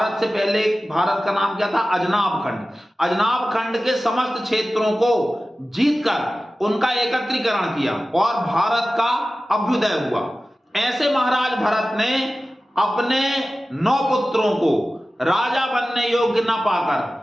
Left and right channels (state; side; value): normal; both; correlation 0.96